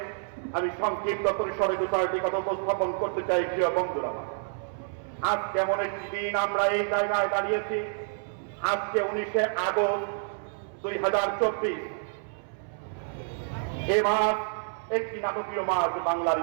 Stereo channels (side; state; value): left; silent; 59 dB below the other